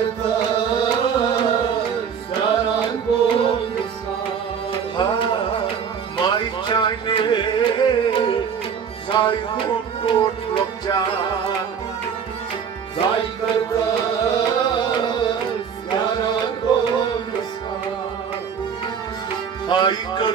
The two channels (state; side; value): quieter; left; 7.2 dB